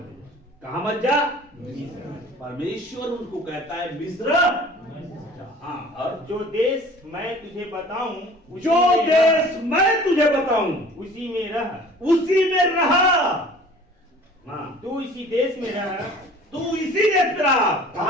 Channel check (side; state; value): both; normal; correlation 0.47